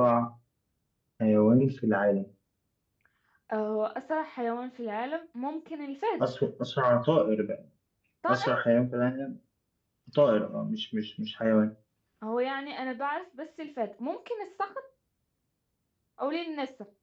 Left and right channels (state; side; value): identical; both; correlation 1.00